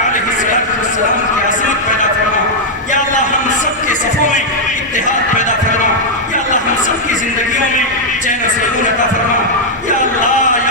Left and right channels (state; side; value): normal; both; correlation -0.03